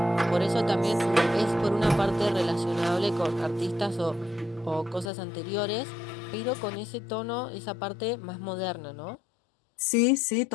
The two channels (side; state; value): right; drops out; at 5.1 s